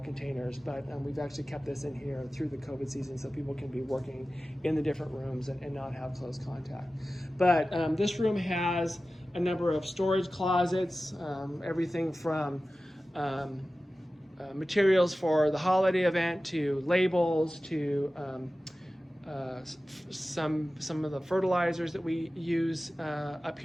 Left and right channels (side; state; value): both; normal; correlation 0.95